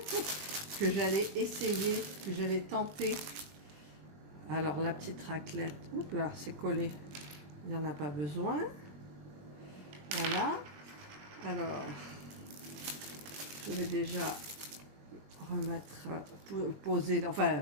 que j'allais essayer, que j'allais tenter. Alors la petite raclette, oups là, c'est collé, il n'y en a pas besoin. Voilà. Alors, je vais déjà remettre, poser,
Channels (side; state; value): left; late; 20 ms